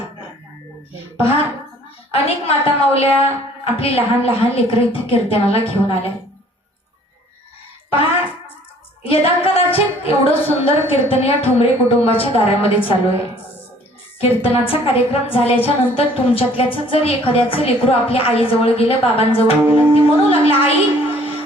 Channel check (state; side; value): normal; both; correlation 0.56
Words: पहा, अनेक माता माऊल्या आपली लहान लहान लेकरं इथे कीर्तनाला घेऊन आल्या. पहा, यदा कदाचित एवढं सुंदर कीर्तन या ठोंबरे कुटुंबाच्या दारामध्ये चालू आहे. कीर्तनाचा कार्यक्रम झाल्याच्या नंतर तुमच्यातल्याच जर एखाद्याचं लेकरू आपल्या आईजवळ गेलं, बाबांजवळ गेलं, ती म्हणू लागला, आई